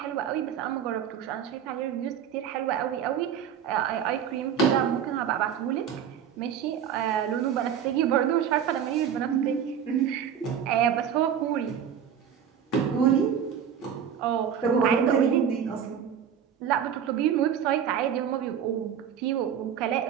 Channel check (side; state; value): left; quieter; 8.5 dB